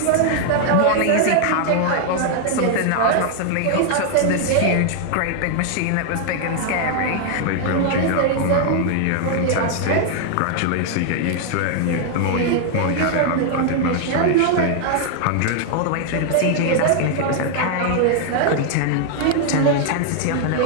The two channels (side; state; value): both; different; correlation 0.00